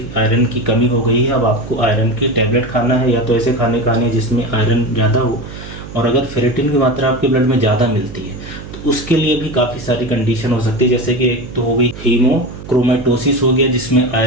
आयरन की कमी हो गई है। अब आपको आयरन की टैबलेट खाना है, या तो ऐसे खाने खाने जिसमें आयरन ज़्यादा हो। और अगर फेरेटिन की मात्रा आपके ब्लड में ज़्यादा मिलती है तो उसके लिए भी काफ़ी सारी कंडीशन हो सकती है, जैसे कि एक तो हो गई हीमोक्रोमेटोसिस हो गया जिसमें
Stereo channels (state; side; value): noise; right; hum, 13 dB below the sound